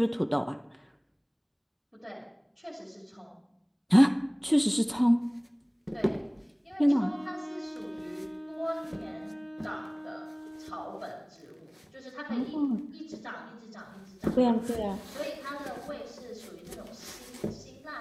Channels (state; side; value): identical; both; correlation 1.00